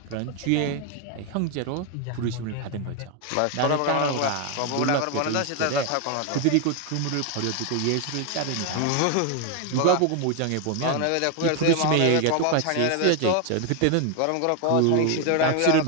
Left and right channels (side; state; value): both; different; correlation 0.01